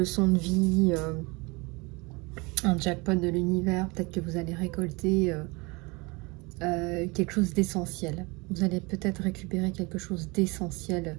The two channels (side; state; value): left; quieter; 26.5 dB